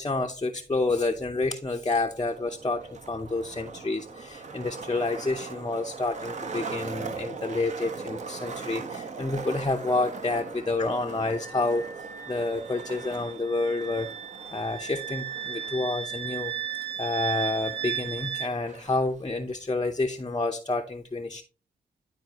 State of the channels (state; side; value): normal; both; correlation 0.57